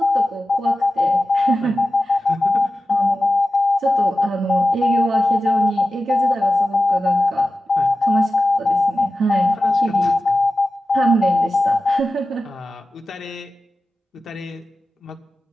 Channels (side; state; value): both; normal; correlation 0.94